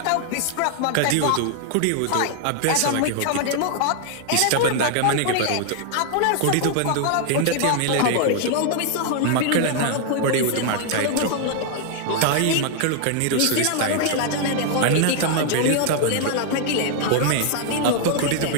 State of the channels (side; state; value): both; different; correlation 0.00